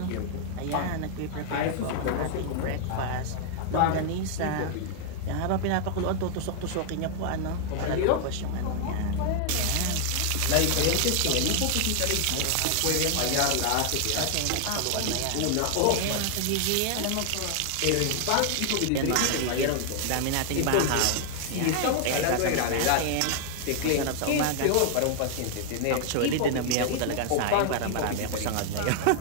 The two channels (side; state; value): both; different; correlation 0.00